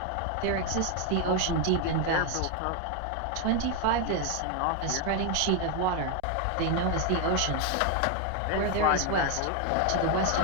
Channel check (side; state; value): both; different; correlation 0.01